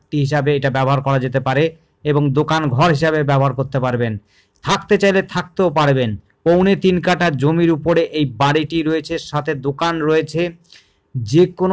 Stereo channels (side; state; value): both; identical; correlation 1.00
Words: হিসাবে এটা ব্যবহার করা যেতে পারে এবং দোকান ঘর হিসাবে ব্যবহার করতে পারবেন। থাকতে চাইলে থাকতেও পারবেন। 3.25 কাঠা জমির উপরে এই বাড়িটি রয়েছে, সাথে দোকান রয়েছে। যে